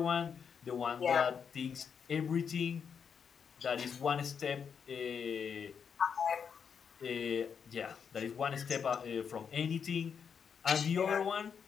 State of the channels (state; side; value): quieter; right; 6.9 dB